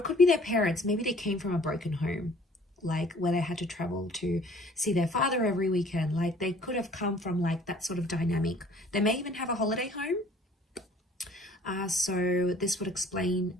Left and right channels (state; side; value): normal; both; correlation 0.54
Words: could be their parents. Maybe they came from a broken home, like where they had to travel to see their father every weekend. Like they could have come from like that sort of dynamic. They may even have a holiday home. So this would explain